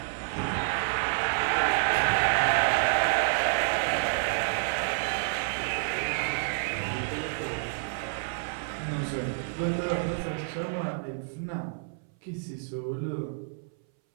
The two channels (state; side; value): silent; left; 59 dB below the other